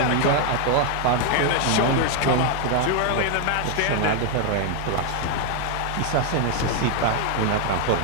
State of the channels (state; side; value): different; both; correlation 0.01